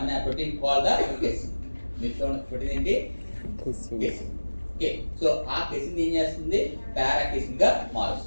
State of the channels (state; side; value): inverted; both; correlation -1.00